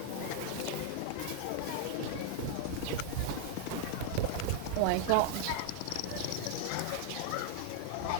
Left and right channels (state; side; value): different; both; correlation 0.00